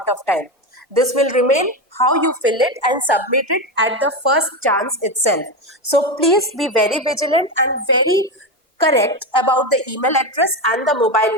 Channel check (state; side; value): normal; both; correlation 0.15